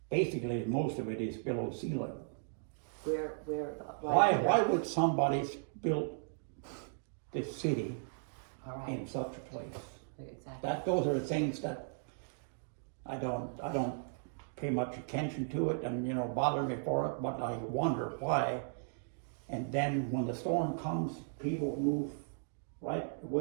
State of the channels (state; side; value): silent; left; digital silence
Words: basically most of it is below sea level. Why would somebody build this city in such a place? Exactly. Those are the things that I don't pay much attention to it, and bother me for it, but I wonder why. And then when the storm comes, people move right